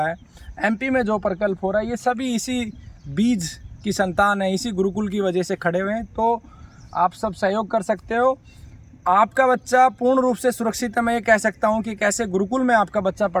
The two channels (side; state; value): both; identical; correlation 1.00